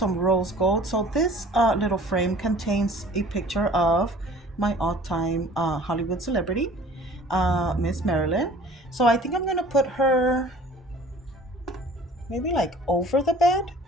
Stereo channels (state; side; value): normal; both; correlation 0.48